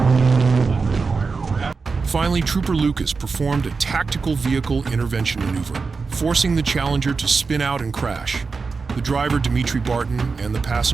Finally, Trooper Lucas performed a tactical vehicle intervention maneuver, forcing the Challenger to spin out and crash. The driver, Dimitri Barton, and the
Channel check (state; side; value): quieter; left; 4.6 dB